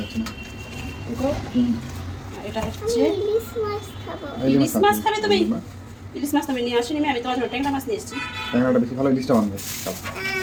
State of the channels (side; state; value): both; identical; correlation 1.00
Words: আছে না। এটা হচ্ছে ইলিশ মাছ। খাবে তুমি? ইলিশ মাছ তুমি নিয়ে আসিনি, আমি তোমার জন্য ট্যাংরা মাছ নিয়ে এসেছি। ট্যাংরাটা বেশি ভালো, ইলিশটা বানবে।